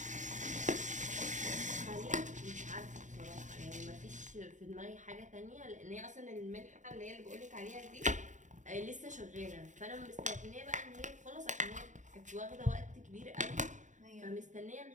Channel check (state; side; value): late; left; 0.36 ms